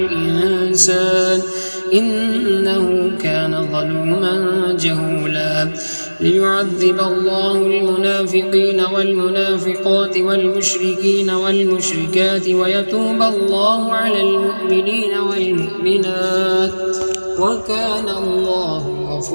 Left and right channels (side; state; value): both; inverted; correlation -1.00